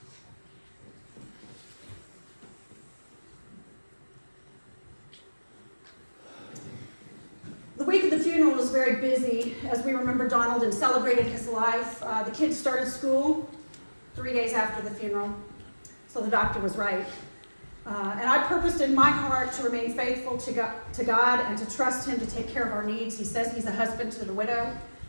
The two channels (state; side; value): inverted; both; correlation -1.00